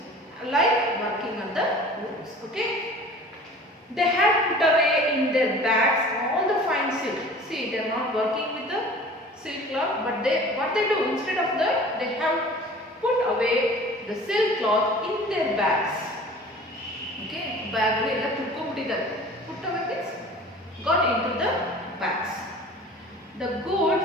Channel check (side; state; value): both; normal; correlation 0.44